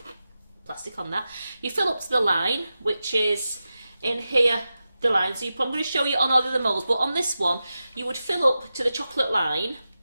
plastic on that. You fill up to the line, which is in here, the line. So I'm going to show you on all of the moulds, but on this one, you would fill up to the chocolate line.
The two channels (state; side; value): inverted; both; correlation -0.92